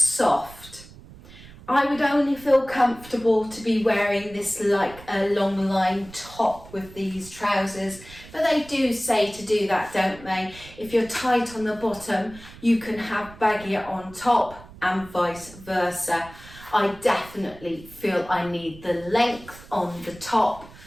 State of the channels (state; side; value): noise; right; rumble, 19 dB below the sound